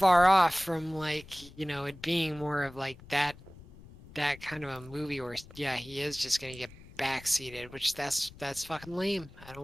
off from like, you know, it being more of like that kind of a movie where, yeah, he is just going to get backseated, which that's fucking lame. I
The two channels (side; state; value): left; noise; rumble, 19 dB below the sound